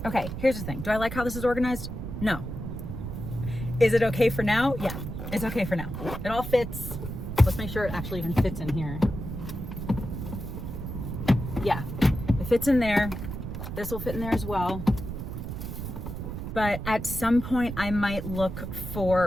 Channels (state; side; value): noise; right; rumble, 6 dB below the sound